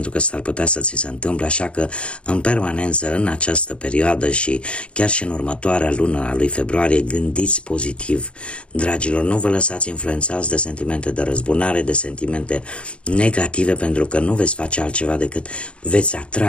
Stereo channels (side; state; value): right; late; 0.059 ms